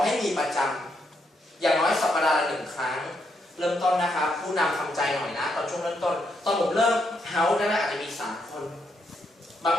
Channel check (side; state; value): both; normal; correlation 0.78